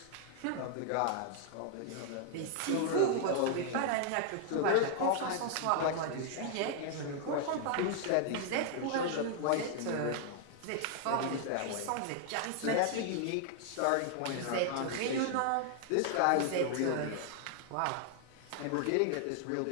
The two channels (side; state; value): both; different; correlation 0.00